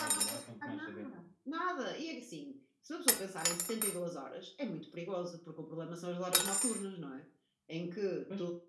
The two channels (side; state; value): both; identical; correlation 1.00